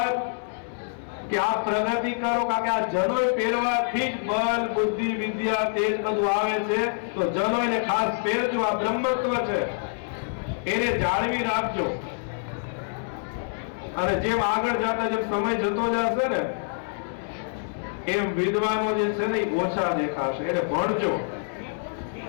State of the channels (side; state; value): right; silent; 61 dB below the other